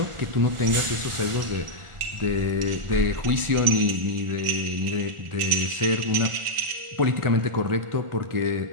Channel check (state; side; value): late; left; 1.4 ms